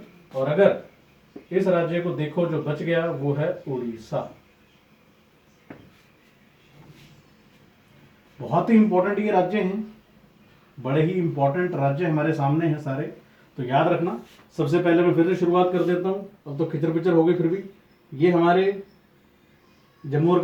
और अगर इस राज्य को देखो जो बच गया वो है उड़ीसा। बहुत ही इंपॉर्टेंट ये राज्य हैं, बड़े ही इंपॉर्टेंट राज्य हमारे सामने हैं सारे, तो याद रखना। सबसे पहले मैं फिर से शुरुआत कर देता हूँ, अब तो खिचर पिचर हो गई, फिर भी ये हमारे जम्मू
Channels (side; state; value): both; identical; correlation 1.00